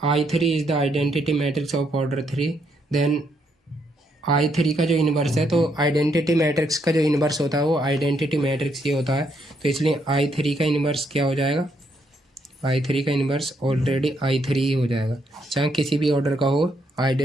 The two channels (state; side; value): normal; both; correlation 0.75